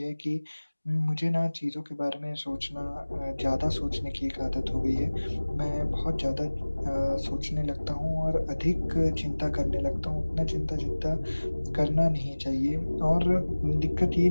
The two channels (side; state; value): both; inverted; correlation -1.00